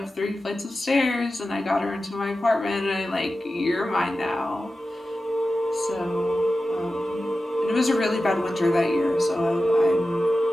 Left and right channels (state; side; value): normal; both; correlation 0.93